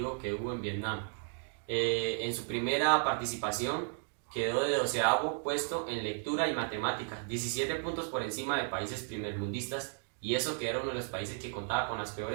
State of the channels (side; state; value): left; silent; 55 dB below the other